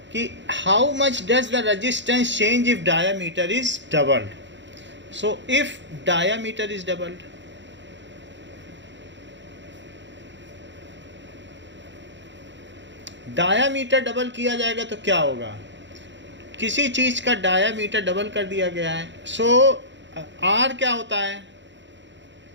कि how much does the resistance change if diameter is doubled. So if diameter is doubled, diameter double किया जाएगा तो क्या होगा? किसी चीज़ का डायामीटर डबल कर दिया गया है। सो आर क्या होता है?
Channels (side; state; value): left; late; 0.53 ms